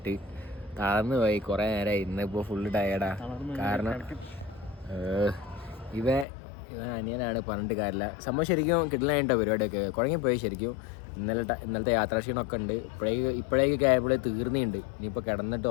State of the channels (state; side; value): drops out; right; at 6.2 s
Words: തളർന്നു പോയി. കുറേ നേരമായി, ഇന്നിപ്പോൾ ഫുള്ള് ടയേർഡാ. കാരണം ഇവ അനിയനാണ്, പറഞ്ഞിട്ട് കാര്യമില്ല. സംഭവം ശരിക്കും കിട്ടലായിട്ടോ പരിപാടിയൊക്കെ കുഴങ്ങിപ്പോയി ശരിക്കും. ഇന്നലത്തെ യാത്രാക്ഷീണമൊക്കെ ഉണ്ട്. ഇപ്പോഴേക്കൊക്കെ ആയപ്പോഴേ തീർന്നിട്ടുണ്ട്. ഇനിയിപ്പോൾ കിടന്നിട്ട്